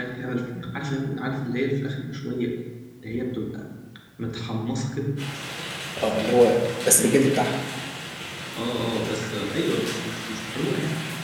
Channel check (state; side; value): identical; both; correlation 1.00